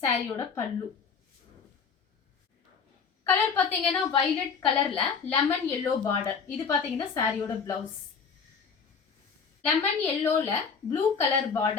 சாரியோட பல்லு. கலர் பாத்தீங்கன்னா வயலட் கலர்ல லெமன் எல்லோ பார்டர். இது பாத்தீங்கன்னா சாரியோட பிளவுஸ். லெமன் எல்லோல ப்ளூ கலர்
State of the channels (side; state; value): right; quieter; 5.8 dB